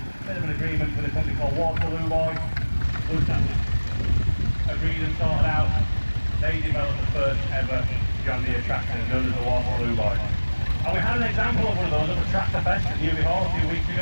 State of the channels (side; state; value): both; inverted; correlation -1.00